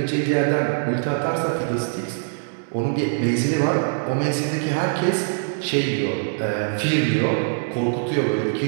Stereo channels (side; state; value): left; silent; 64 dB below the other